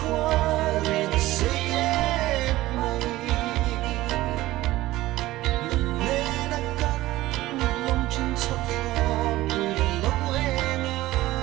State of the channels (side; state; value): left; quieter; 16.9 dB